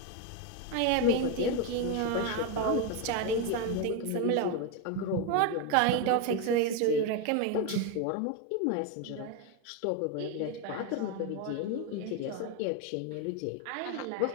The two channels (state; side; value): different; both; correlation 0.02